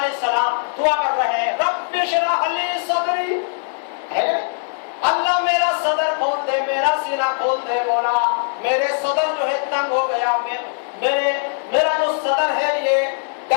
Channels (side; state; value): right; silent; digital silence